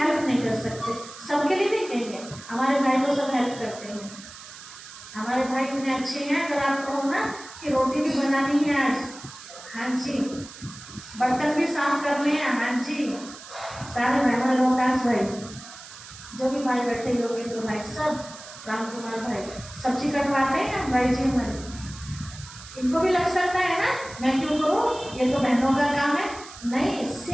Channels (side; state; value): right; noise; hiss, 16 dB below the sound